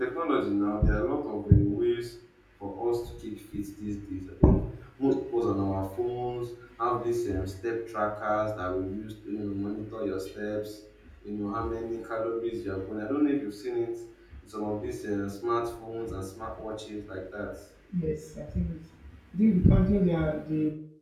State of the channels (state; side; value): identical; both; correlation 1.00